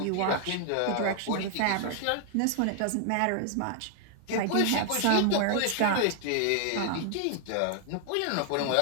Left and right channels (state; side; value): different; both; correlation 0.00